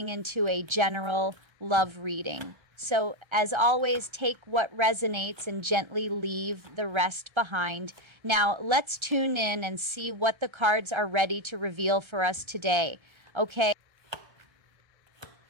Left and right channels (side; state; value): left; late; 1.3 ms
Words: into a general love reading. So, as always, take what resonates and gently leave the rest behind. Now, let's tune in and see what the cards are ready to reveal for us today. Okay?